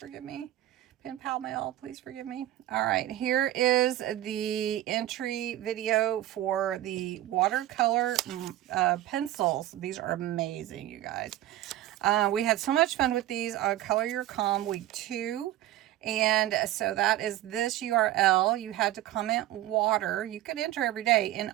me. Pen Pal Mail, please forgive me. All right, here is the entry video for the watercolor pencils. These are amazing, you guys. We had so much fun with these on Color Your Calm week 2. And so that is this URL. You had to comment water. You could enter every day. In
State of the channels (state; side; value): quieter; left; 14.1 dB